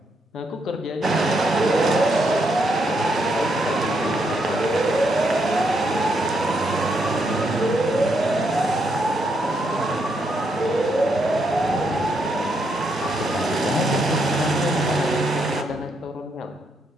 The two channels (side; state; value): both; normal; correlation 0.77